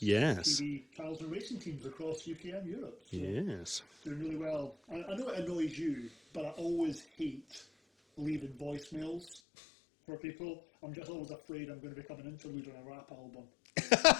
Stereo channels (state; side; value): drops out; right; at 9.4 s